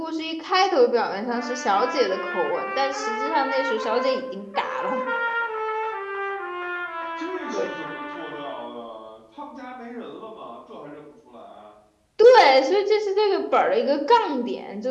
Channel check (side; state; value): both; identical; correlation 1.00